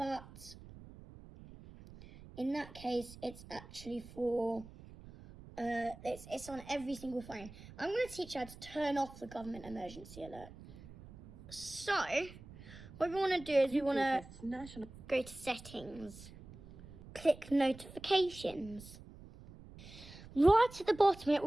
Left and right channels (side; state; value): right; noise; rumble, 17 dB below the sound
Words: in that case, it's actually for it's on every single phone. I'm going to teach you how to turn off the government emergency alert. So, what we want to do is we want to National. go to settings, click notifications. Right at the bottom, it